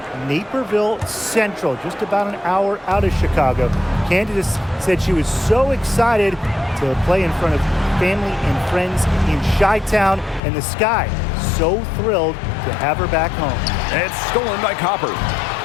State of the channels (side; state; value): right; drops out; at 10.4 s